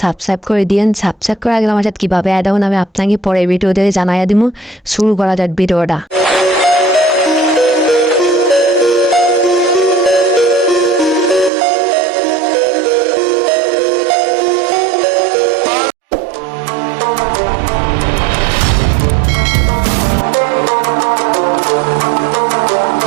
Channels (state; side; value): drops out; left; at 11.5 s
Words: সাবস্ক্রাইব করে দিন। সাবস্ক্রাইব করে আগে আমার সাথে কীভাবে অ্যাড হন আমি আপনাকে পরে ভিডিওতে জানাইয়া দিব। শুরু করা যাক ভিডিওটা।